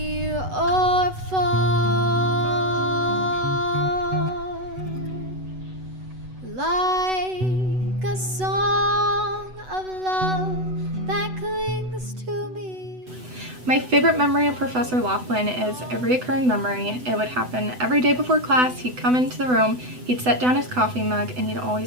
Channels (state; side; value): late; left; 8.0 ms